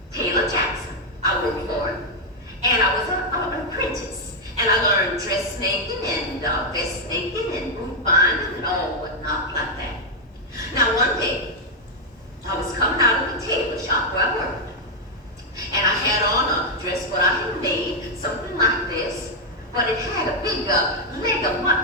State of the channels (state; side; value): normal; both; correlation 0.00